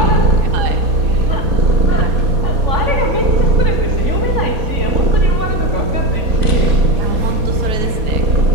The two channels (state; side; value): late; left; 4.2 ms